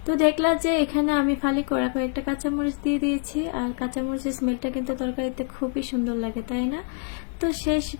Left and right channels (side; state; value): right; quieter; 38.8 dB